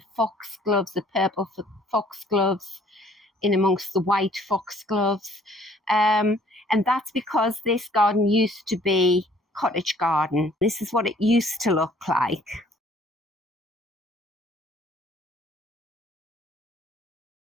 foxgloves, the purple foxgloves in amongst the white foxgloves. And that's because this garden used to be cottage garden. This is what it used to look like.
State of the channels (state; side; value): normal; both; correlation 0.59